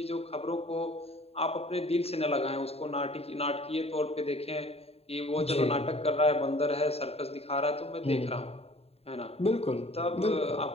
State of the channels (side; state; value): right; late; 0.29 ms